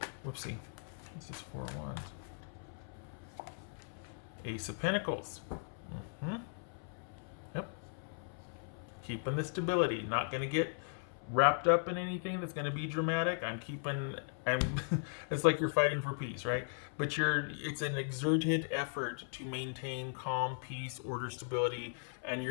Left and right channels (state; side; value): silent; right; 53 dB below the other